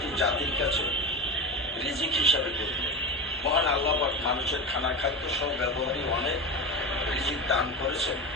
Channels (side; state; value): both; normal; correlation 0.23